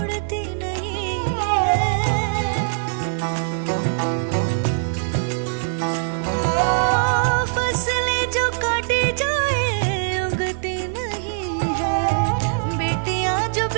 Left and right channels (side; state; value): left; silent; digital silence